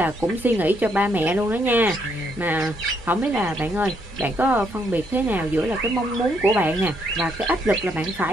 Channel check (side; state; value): both; normal; correlation 0.74